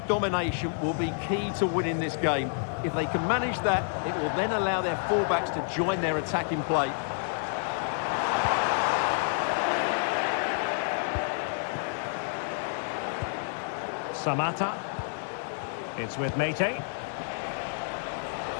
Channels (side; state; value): right; silent; 59 dB below the other